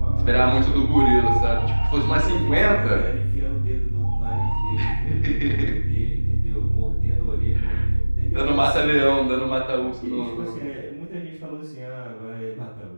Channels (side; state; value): both; inverted; correlation -1.00